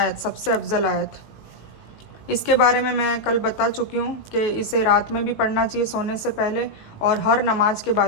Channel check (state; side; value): late; right; 19 ms